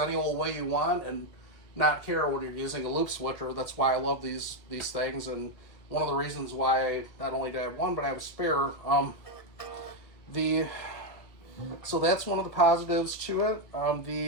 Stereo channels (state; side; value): late; right; 2.1 ms